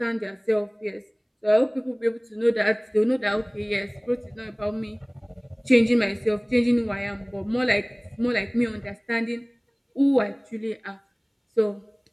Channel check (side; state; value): both; identical; correlation 1.00